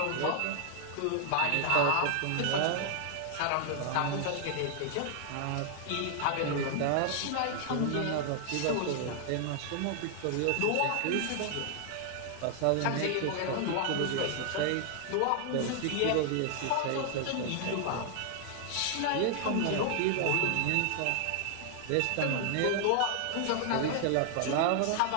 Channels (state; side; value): different; both; correlation 0.00